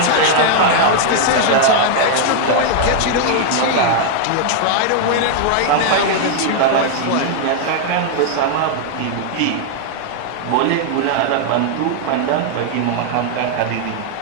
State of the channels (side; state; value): both; different; correlation -0.01